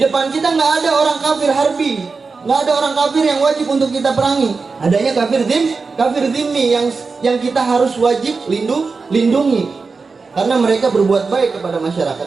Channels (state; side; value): quieter; left; 4.5 dB